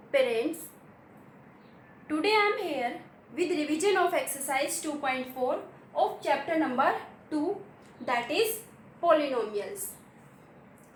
parents. Today I am here with revision of exercise 2.4 of chapter number 2, that is polynomials.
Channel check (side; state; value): both; identical; correlation 1.00